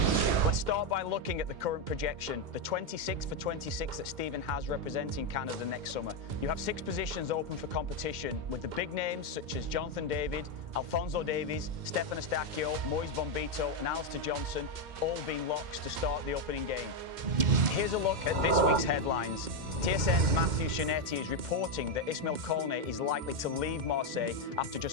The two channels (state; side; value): late; left; 2.1 ms